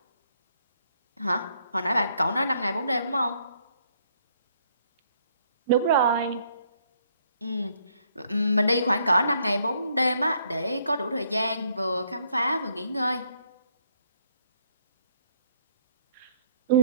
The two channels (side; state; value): both; inverted; correlation -0.68